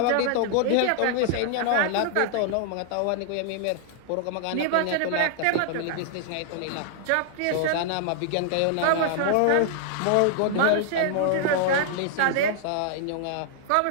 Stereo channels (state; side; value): different; both; correlation -0.01